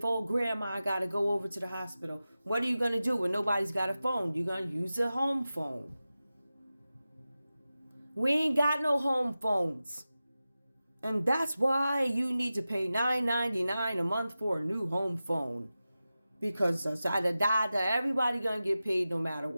old grandma got to go over to the hospital? What are you going to do when nobody's got a phone? You're going to use a home phone. We ain't got no home phones. And that's why you need to pay $9.99 a month for a new home phone. Because everybody going to get paid no matter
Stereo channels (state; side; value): inverted; both; correlation -0.94